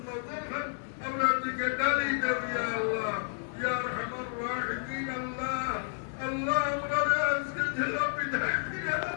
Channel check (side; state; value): right; silent; 56 dB below the other